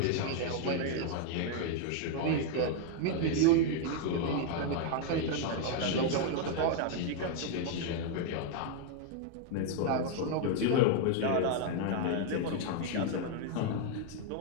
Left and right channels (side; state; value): both; different; correlation 0.00